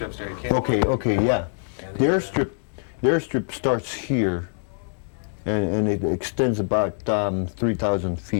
there, you can't. Okay, yeah. And The airstrip starts here, and it extends about 3,000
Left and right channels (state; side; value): silent; right; digital silence